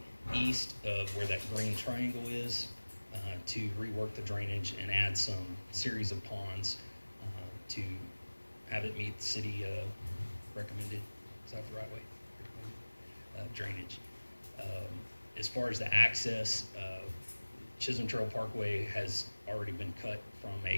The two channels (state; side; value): inverted; both; correlation -1.00